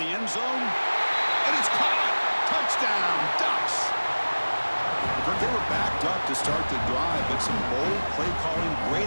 end zone, and it's caught. Touchdown, Ducks. They were backed up to start the drive, but some bold play calling,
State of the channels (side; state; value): both; inverted; correlation -1.00